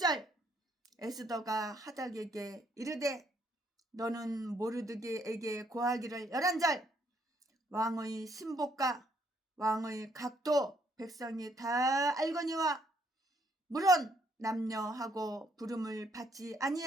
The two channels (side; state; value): both; normal; correlation 0.70